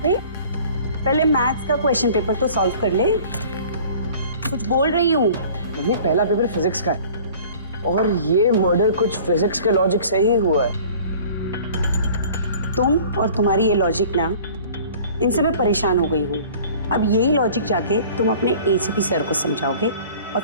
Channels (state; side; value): inverted; both; correlation -0.47